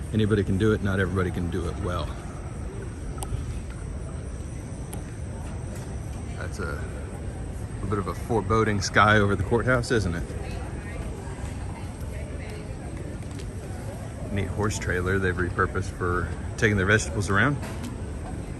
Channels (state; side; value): identical; both; correlation 1.00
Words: Anybody can do it, not everybody can do it well. That's a bit of a foreboding sky over the courthouse, isn't it? Neat horse trailer they've repurposed for taking their vegetables around.